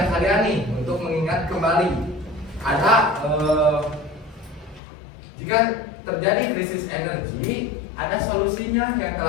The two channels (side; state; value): right; drops out; at 4.8 s